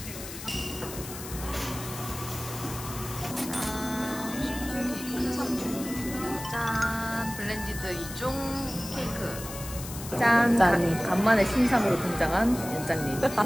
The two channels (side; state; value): left; noise; hiss, 11 dB below the sound